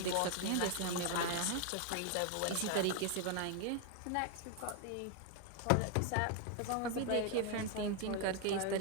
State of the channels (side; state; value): both; different; correlation 0.01